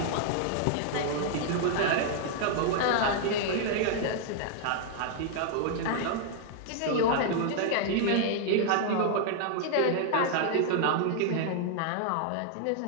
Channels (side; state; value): both; different; correlation 0.00